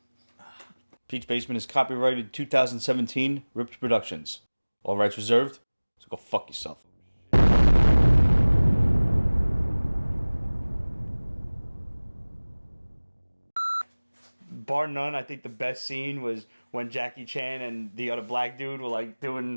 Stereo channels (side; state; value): both; inverted; correlation -1.00